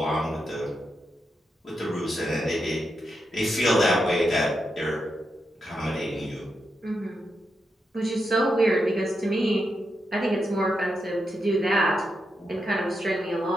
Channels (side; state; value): both; normal; correlation 0.85